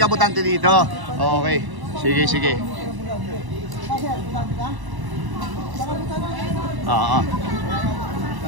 ka butante dito. Okay. Sige. Oo.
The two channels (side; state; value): left; late; 1.0 ms